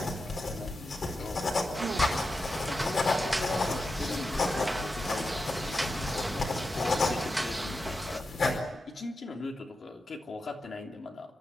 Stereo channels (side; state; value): both; normal; correlation 0.89